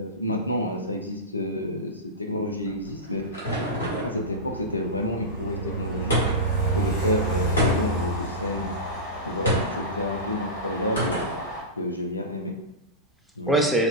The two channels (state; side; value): normal; both; correlation -0.16